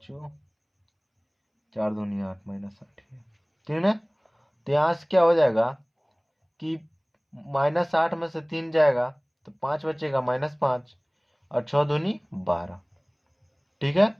4 दूनी 8 -8, ठीक है ना। तो यहाँ से क्या हो जाएगा कि -8 में से 3 जाएगा तो 5 बचेगा -5 और 6 दूनी 12, ठीक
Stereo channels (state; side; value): identical; both; correlation 1.00